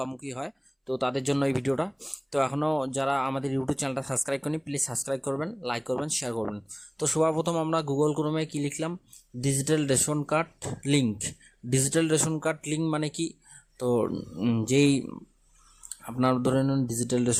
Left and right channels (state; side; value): identical; both; correlation 1.00